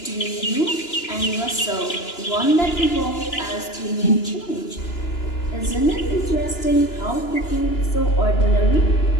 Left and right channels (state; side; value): late; right; 2.9 ms